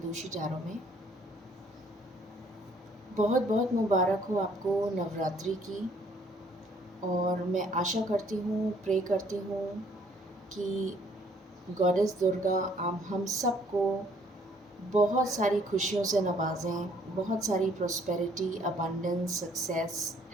टैरो में। बहुत बहुत मुबारक हो आपको नवरात्रि की। और मैं आशा करती हूँ, प्रे करती हूँ कि गॉडेस दुर्गा हम सबको बहुत सारी खुशियों से नवाजें, बहुत सारी प्रॉस्पेरिटी, अबंडेंस, सक्सेस,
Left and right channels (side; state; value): both; normal; correlation 0.62